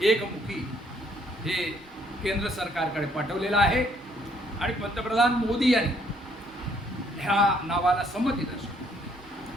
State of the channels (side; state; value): both; normal; correlation 0.66